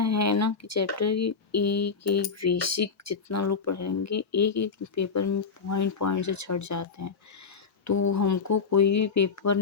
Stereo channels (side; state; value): right; quieter; 5.2 dB